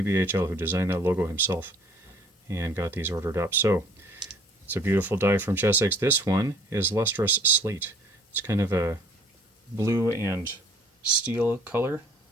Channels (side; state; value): both; normal; correlation 0.56